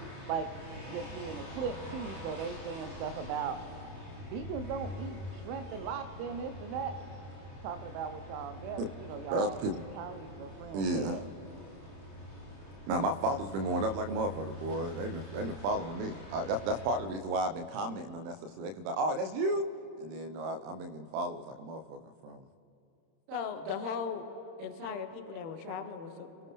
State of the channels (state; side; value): late; left; 31 ms